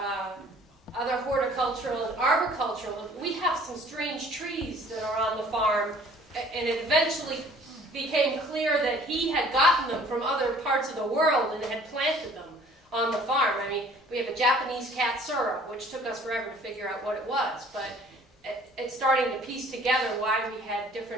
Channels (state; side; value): normal; both; correlation 0.54